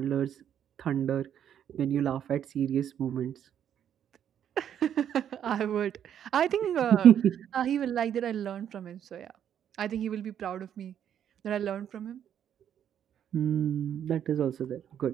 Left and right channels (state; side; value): quieter; left; 9.5 dB